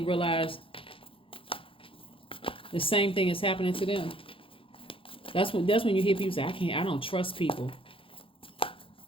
the same thing is happening to them. That's when you hear people say, I don't trust people.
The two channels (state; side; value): late; right; 0.26 ms